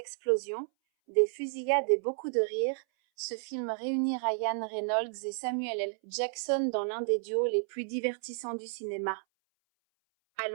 des fusillades et beaucoup de rires, ce film réunit Ryan Reynolds et Samuel L. Jackson dans l'un des duos les plus divertissants du cinéma.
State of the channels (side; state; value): left; silent; 57 dB below the other